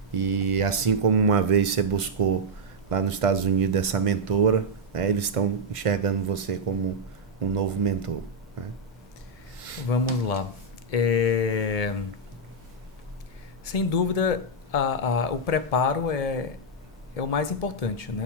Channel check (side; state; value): both; normal; correlation -0.03